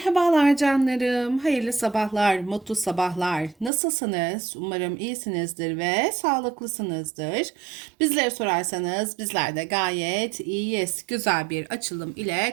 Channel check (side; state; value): left; drops out; at 3.7 s